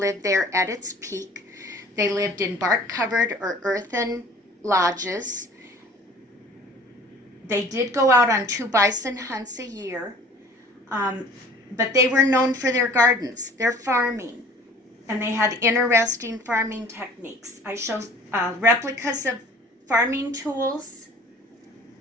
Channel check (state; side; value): normal; both; correlation 0.49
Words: there at its peak. They lived in bark-covered or earthen lodges. They did go out on 2 bison hunts a year, but they were known for their gardens, their farming, and they had interesting farming techniques. I show replicas of farming tools,